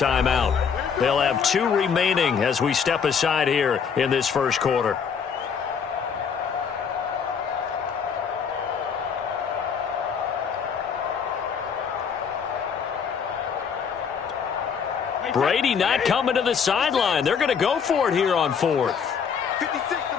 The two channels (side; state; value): right; quieter; 6.7 dB